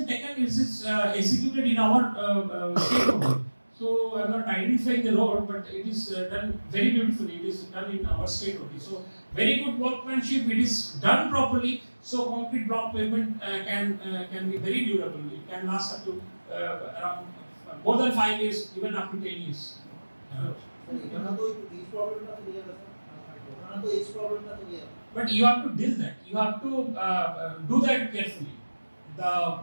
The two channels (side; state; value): both; inverted; correlation -1.00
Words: taken. It is executed in our state only. So I'm not identifying the road, but it is done very beautifully. It is done in our state only. So very good workmanship. It is done properly. So concrete block pavement can be very durable. It can last up to around more than 5 years, even up to 10 years. But you have to deal that. You have to do that carefully. The